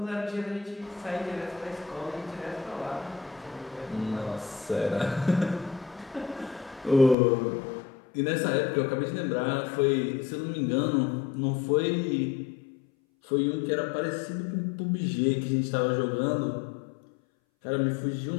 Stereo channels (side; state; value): right; drops out; at 7.2 s